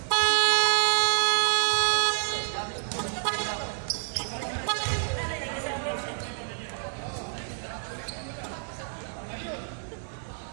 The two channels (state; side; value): silent; left; digital silence